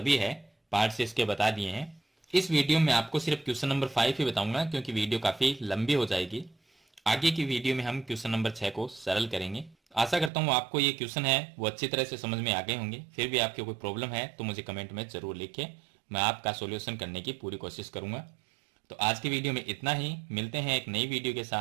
है पार्ट से इसके बता दिए हैं। इस वीडियो में आपको सिर्फ क्वेश्चन नंबर 5 ही बताऊंगा, क्योंकि वीडियो काफी लंबी हो जाएगी। आगे की वीडियो में हम क्वेश्चन नंबर 6 को सरल करेंगे। आशा करता हूं आपको ये क्वेश्चन है वो अच्छी तरह से समझ में आ गए होंगे। फिर भी आपके कोई प्रॉब्लम है तो मुझे कमेंट में जरूर लिखें, मैं आपका सॉल्यूशन करने की पूरी कोशिश करूंगा। तो आज की वीडियो में इतना ही, मिलते हैं एक नई वीडियो के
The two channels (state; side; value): drops out; left; at 10.3 s